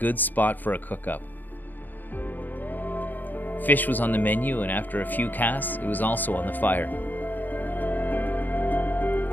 spot for a cook-up. Fish was on the menu, and after a few casts, it was also on the fire.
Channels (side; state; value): right; late; 0.086 ms